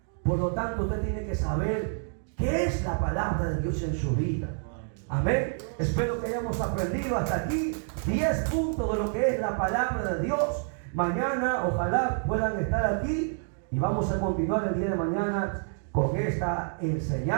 Por lo tanto, usted tiene que saber qué es la palabra de Dios en su vida. Amén. Espero que hayamos aprendido hasta aquí 10 puntos de lo que es la palabra de Dios. Mañana ojalá puedan estar aquí y vamos a continuar el día de mañana con esta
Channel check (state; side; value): silent; left; 59 dB below the other